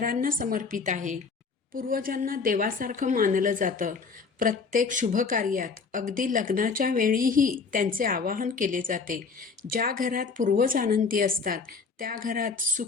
समर्पित आहे. पूर्वजांना देवासारखं मानलं जातं. प्रत्येक शुभकार्यात अगदी लग्नाच्या वेळीही त्यांचे आवाहन केले जाते. ज्या घरात पूर्वज आनंदी असतात त्या घरात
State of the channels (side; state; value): right; quieter; 4.9 dB